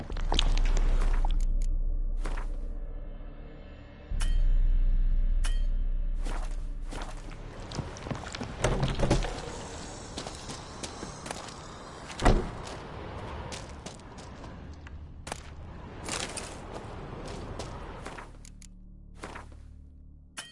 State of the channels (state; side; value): identical; both; correlation 1.00